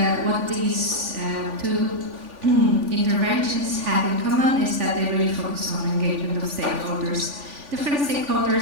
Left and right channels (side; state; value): left; late; 3.5 ms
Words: what these two interventions have in common is that they really focus on engagement of stakeholders, different